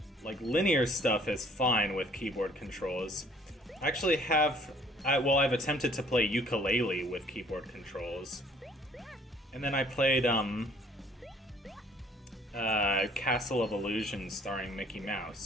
Like, linear stuff is fine with keyboard controls. I actually have Well, I've attempted to play ukulele with keyboard controls. And then I played, Castle of Illusion starring Mickey Mouse.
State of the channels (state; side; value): normal; both; correlation 0.58